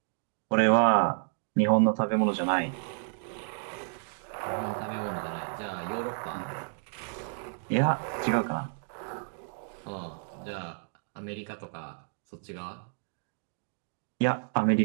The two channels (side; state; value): left; silent; digital silence